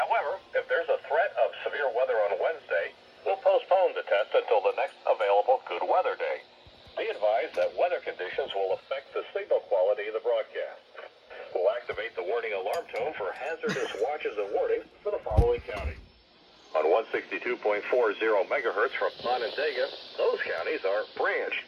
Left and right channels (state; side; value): identical; both; correlation 1.00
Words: if there's a threat of severe weather on Wednesday, we'll postpone the test until the next available good weather day. Be advised that weather conditions will affect the signal quality of the broadcast. We'll activate the warning alarm tone for hazardous watches and warnings for the following counties. On 162.40 megahertz from Onondaga, those counties are Branch,